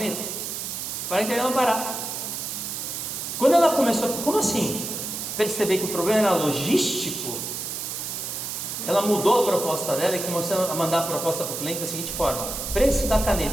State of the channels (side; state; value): right; noise; hiss, 5 dB below the sound